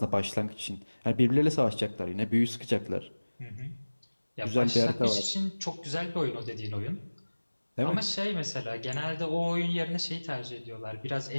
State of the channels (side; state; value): both; inverted; correlation -1.00